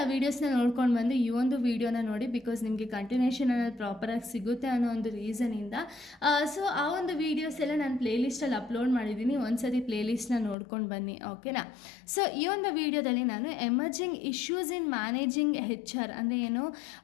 ವೀಡಿಯೋಸ್ನ ನೋಡ್ಕೊಂಡು ಬಂದು ಈ ಒಂದು ವೀಡಿಯೋನ ನೋಡಿ, ಬಿಕಾಸ್ ನಿಮಗೆ ಕಂಟಿನ್ಯೂಷನ್ ಅನ್ನೋದು ಪ್ರಾಪರಾಗಿ ಸಿಗುತ್ತೆ ಅನ್ನೋ ಒಂದು ರೀಸನಿಂದ. ಸೊ ಆ ಒಂದು ವೀಡಿಯೋಸ್ ಎಲ್ಲ ನಾನು ಪ್ಲೇಲಿಸ್ಟಲ್ಲಿ ಅಪ್ಲೋಡ್ ಮಾಡಿದ್ದೀನಿ, ಒಂದ್ಸತಿ ಪ್ಲೇಲಿಸ್ಟ್ನ ನೋಡ್ಕೊಂಡು ಬನ್ನಿ, ಓಕೆನಾ. ಸೊ ಈ ಒಂದು ವೀಡಿಯೋದಲ್ಲಿ ನಾನು ಎಮರ್ಜಿಂಗ್ ಇಶ್ಯೂಸ್ ಇನ್ ಮ್ಯಾನೇಜಿಂಗ್ HR ಅಂದರೆ ಏನು,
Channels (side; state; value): right; drops out; at 10.6 s